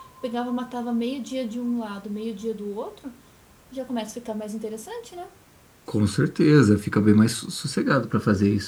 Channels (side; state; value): both; identical; correlation 1.00